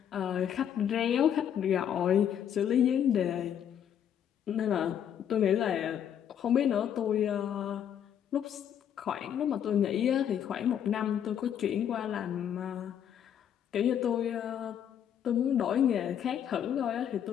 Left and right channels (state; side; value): quieter; right; 9.3 dB